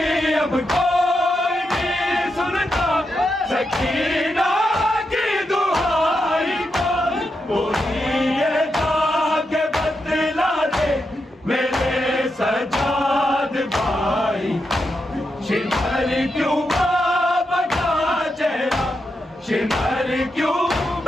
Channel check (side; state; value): both; normal; correlation 0.85